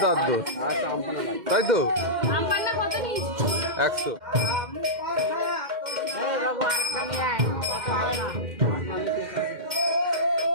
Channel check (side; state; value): left; late; 2.1 ms